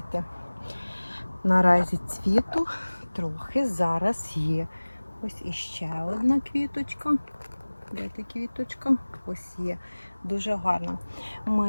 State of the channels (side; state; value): both; inverted; correlation -1.00